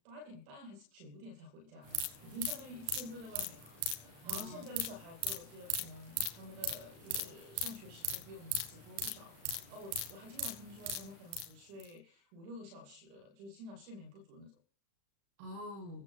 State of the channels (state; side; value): late; left; 36 ms